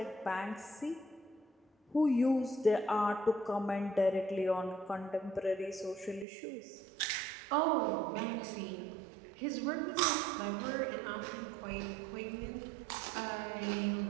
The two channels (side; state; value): left; drops out; at 6.2 s